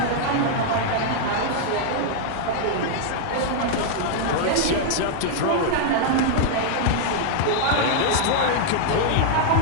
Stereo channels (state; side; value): different; both; correlation -0.01